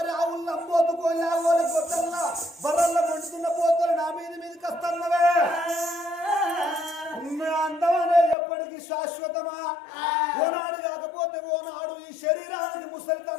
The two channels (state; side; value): drops out; right; at 8.3 s